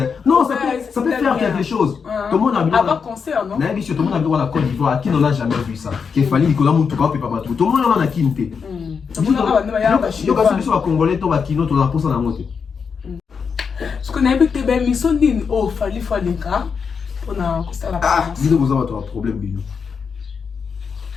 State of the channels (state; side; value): quieter; right; 6.0 dB